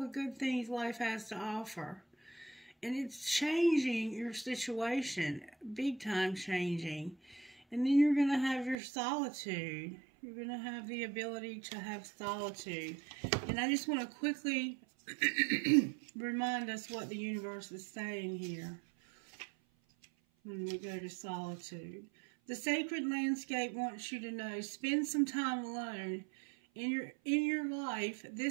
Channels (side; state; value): left; drops out; at 8.8 s